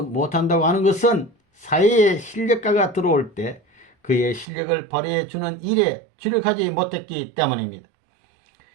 못한다고 하는 것은 사회에 실력가가 들어올 때 그의 실력을 발휘해 주는 일에 주력하지 못했기 때문입니다.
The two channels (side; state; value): left; drops out; at 4.5 s